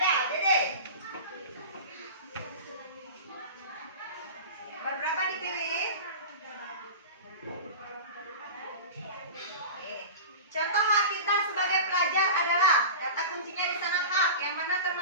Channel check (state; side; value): inverted; both; correlation -0.32